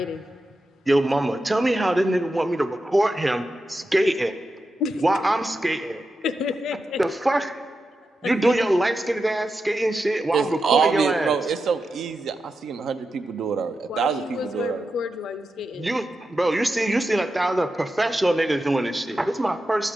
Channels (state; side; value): normal; both; correlation 0.89